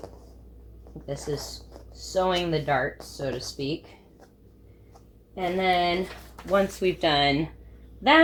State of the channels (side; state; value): both; identical; correlation 1.00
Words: This is sewing the darts, so to speak. And then once we've done